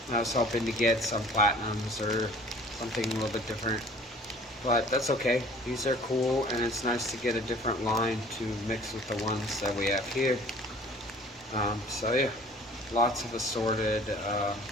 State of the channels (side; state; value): both; normal; correlation 0.49